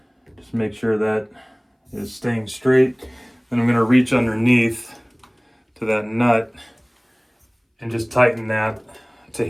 Just make sure that it's staying straight. Then I'm going to reach underneath to that nut and just tighten that to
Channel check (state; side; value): identical; both; correlation 1.00